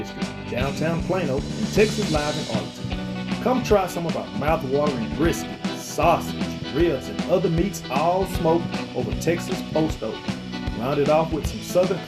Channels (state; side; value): identical; both; correlation 1.00